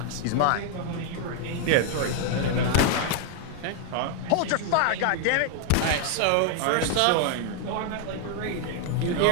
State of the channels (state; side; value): different; both; correlation 0.00